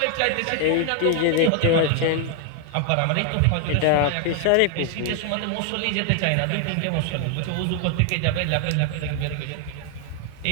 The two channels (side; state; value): both; different; correlation 0.00